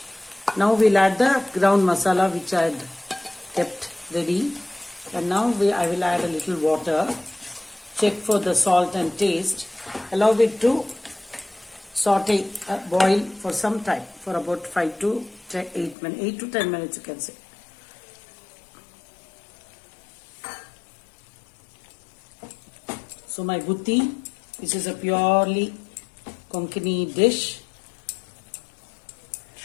Now we'll add the ground masala which I had kept ready, and now I will add a little water, check for the salt and taste, allow it to saute, boil for some time, for about 8 to 10 minutes you can say. So my butti, this is a purely Konkani dish,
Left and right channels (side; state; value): right; drops out; at 16.0 s